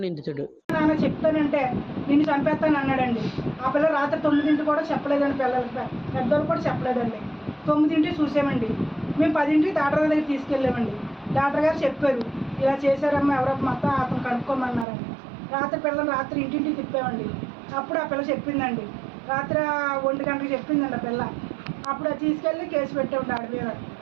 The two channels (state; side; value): drops out; left; at 14.9 s